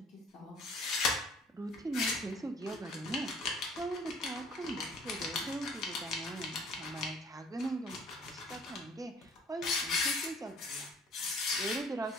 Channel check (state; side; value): normal; both; correlation 0.53